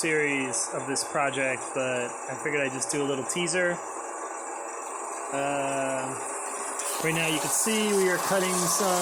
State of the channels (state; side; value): identical; both; correlation 1.00